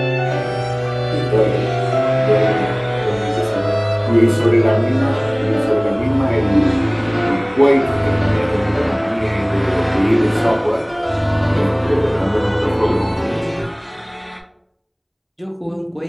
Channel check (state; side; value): identical; both; correlation 1.00